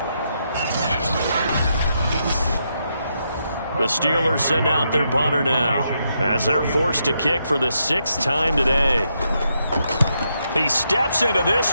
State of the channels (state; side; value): inverted; both; correlation -0.80